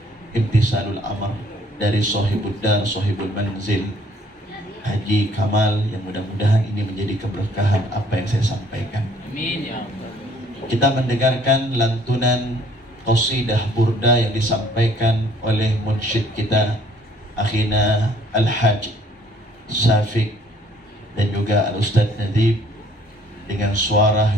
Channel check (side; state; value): both; normal; correlation 0.60